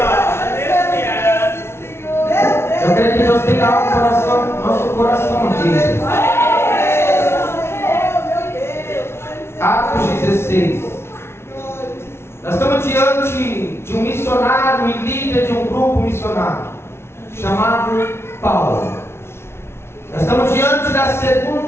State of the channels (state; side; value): late; right; 0.12 ms